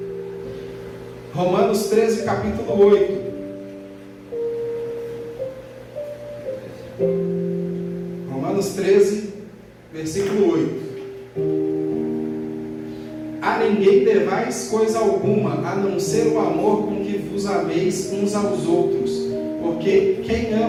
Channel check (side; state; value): both; identical; correlation 1.00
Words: Romanos 13, capítulo 8. Romanos 13, versículo 8. A ninguém devais coisa alguma, a não ser o amor com que vos ameis uns aos outros, porque quem